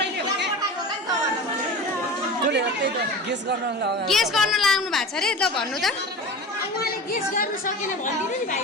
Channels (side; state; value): both; normal; correlation 0.32